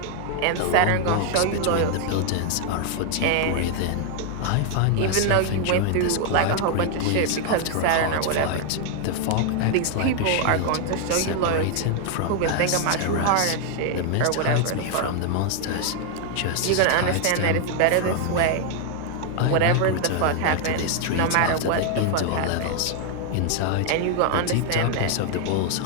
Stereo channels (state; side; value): different; both; correlation 0.00